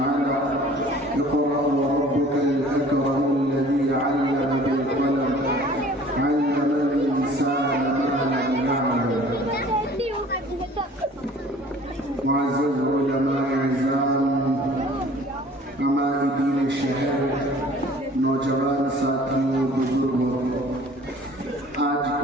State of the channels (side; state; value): both; normal; correlation 0.50